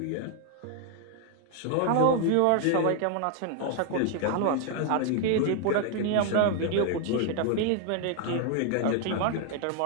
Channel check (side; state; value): both; different; correlation 0.00